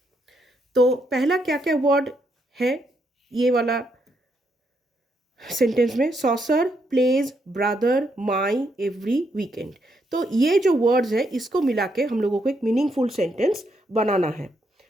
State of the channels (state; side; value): normal; both; correlation 0.77